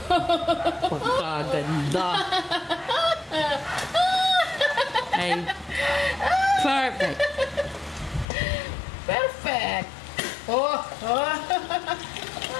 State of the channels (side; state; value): right; drops out; at 8.2 s